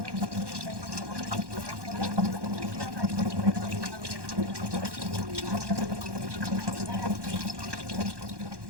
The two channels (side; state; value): left; late; 1.1 ms